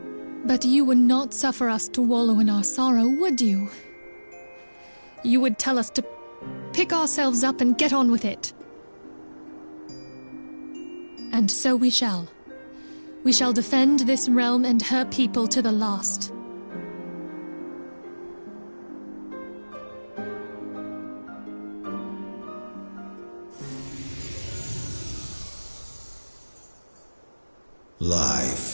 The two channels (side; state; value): both; inverted; correlation -1.00